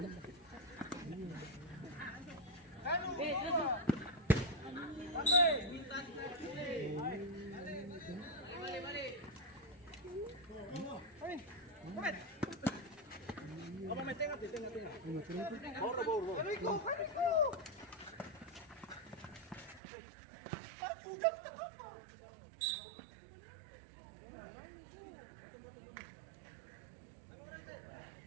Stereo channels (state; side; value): drops out; left; at 19.8 s